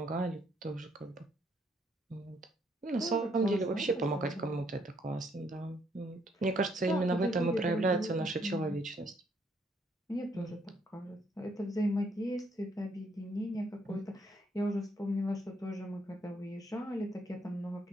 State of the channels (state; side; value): normal; both; correlation 0.70